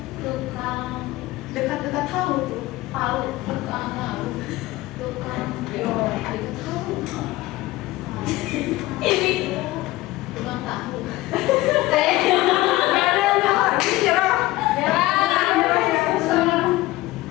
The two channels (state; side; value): quieter; right; 18.2 dB